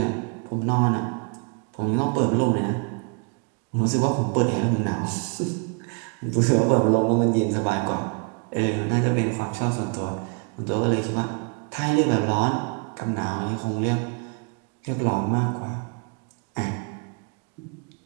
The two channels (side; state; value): left; quieter; 37.0 dB